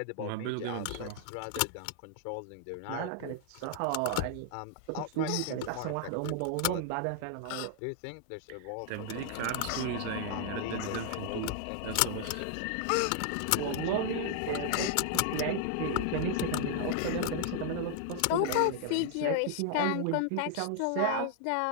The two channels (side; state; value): both; different; correlation 0.00